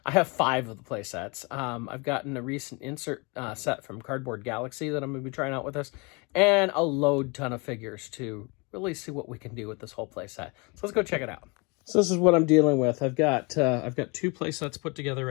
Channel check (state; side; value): quieter; right; 29.5 dB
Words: I have 5 of the playsets. I've gotten a recent insert set from Cardboard Galaxy that I'm going to be trying out with us, and a load ton of figures to really see what we can do with this whole playset. So let's go check it out. So this is what I'm dealing with. I've got 2 playsets put together